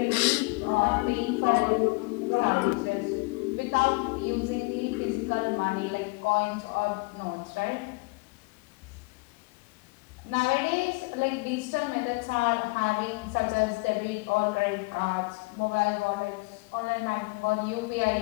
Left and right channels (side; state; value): right; quieter; 26.9 dB